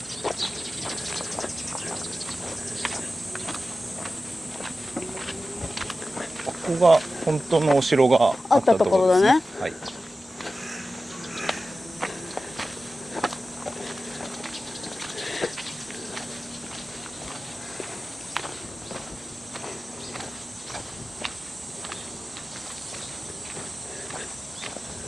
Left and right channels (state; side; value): normal; both; correlation 0.94